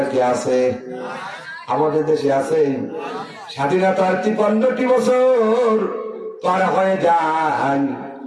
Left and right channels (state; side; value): identical; both; correlation 1.00